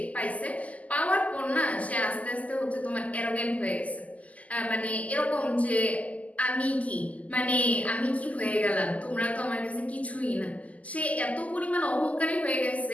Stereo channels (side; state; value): right; late; 0.072 ms